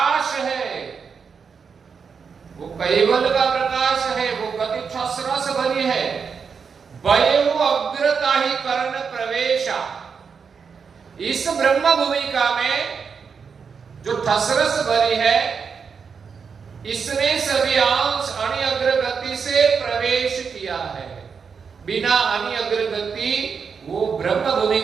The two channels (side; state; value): left; quieter; 6.0 dB